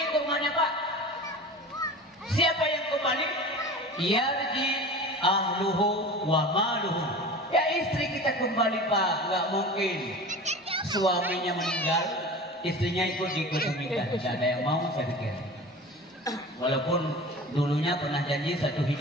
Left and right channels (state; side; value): normal; both; correlation 0.36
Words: ke rumahnya Pak. Siapa yang kembali? Yarji ahluhu wa maluhu. Ya istri kita kembali Pak. Nggak mungkin suaminya meninggal, istrinya ikut dikebumikan. Tidak ada yang mau saya pikir. Walaupun dulunya pernah janji 1